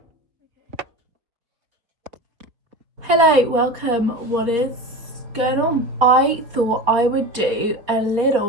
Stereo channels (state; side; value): late; left; 4.0 ms